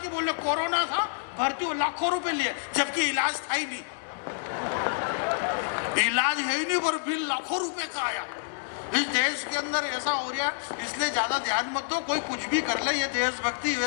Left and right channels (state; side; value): silent; right; 59 dB below the other